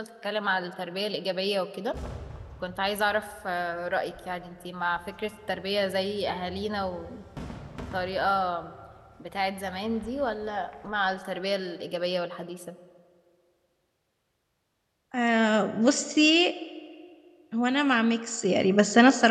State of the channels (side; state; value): both; identical; correlation 1.00